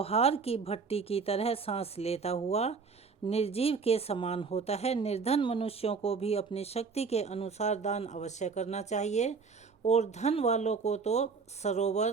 की भट्टी की तरह सांस लेता हुआ निर्जीव के समान होता है। निर्धन मनुष्यों को भी अपनी शक्ति के अनुसार दान अवश्य करना चाहिए, और धन वालों को तो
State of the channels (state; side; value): quieter; left; 5.1 dB